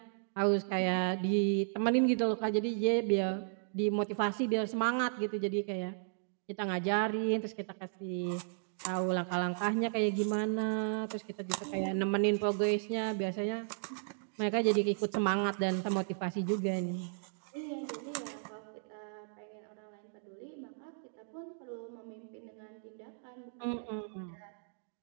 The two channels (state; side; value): silent; left; digital silence